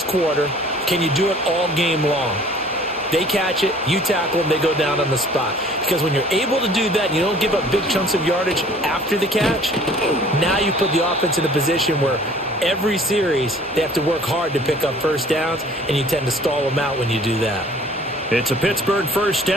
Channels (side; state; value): both; normal; correlation 0.52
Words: quarter, can you do it all game long? They catch it, you tackle them, they go down on the spot. Because when you're able to do that and you don't give up big chunks of yardage after the catch, now you put the offense in a position where every series they have to work hard to pick up first downs, and you tend to stall them out when you do that. It's a Pittsburgh first